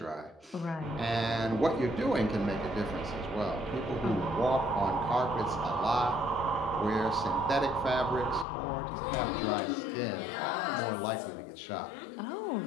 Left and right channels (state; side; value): drops out; right; at 8.5 s